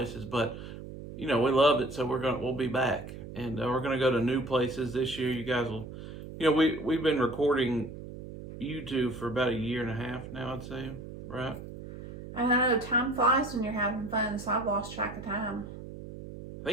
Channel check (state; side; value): noise; right; hum, 11 dB below the sound